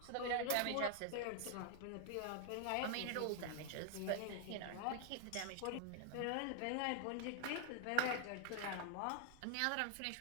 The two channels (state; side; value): different; both; correlation 0.00